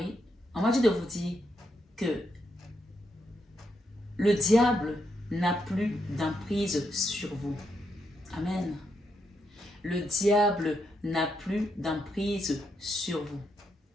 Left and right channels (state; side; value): normal; both; correlation 0.80